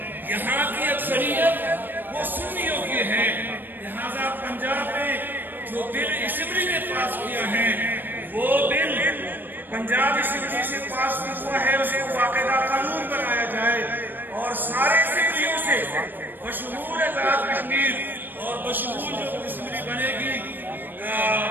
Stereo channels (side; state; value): left; late; 0.093 ms